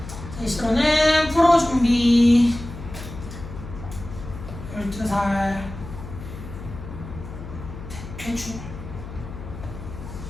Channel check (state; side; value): noise; left; hum, 11 dB below the sound